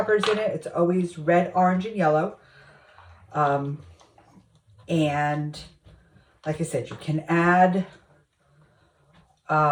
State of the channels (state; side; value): identical; both; correlation 1.00